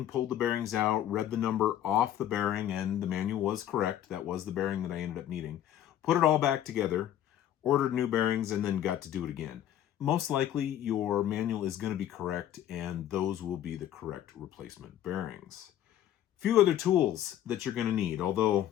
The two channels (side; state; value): right; quieter; 11.5 dB